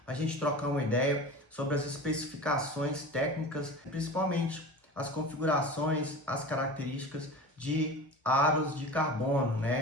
a gente trocar uma ideia sobre as especificações técnicas, principalmente as configurações, as características de aros de carbono,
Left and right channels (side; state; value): both; normal; correlation 0.34